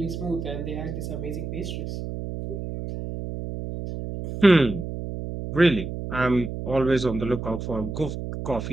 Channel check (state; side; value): noise; right; hum, 6 dB below the sound